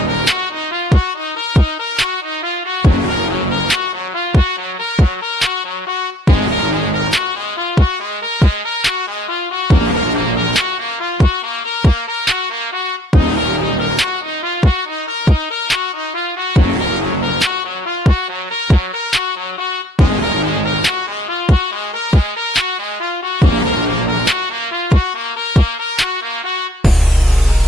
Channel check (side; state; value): both; normal; correlation 0.63